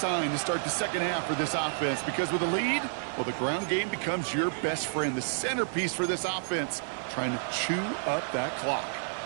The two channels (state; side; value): silent; left; 55 dB below the other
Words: to start the second half for this offense, because with a lead, well, the ground game becomes your best friend, the centerpiece for this offense, trying to chew up that clock.